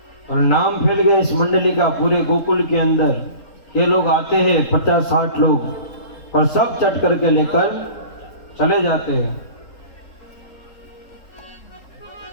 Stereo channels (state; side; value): late; right; 3.7 ms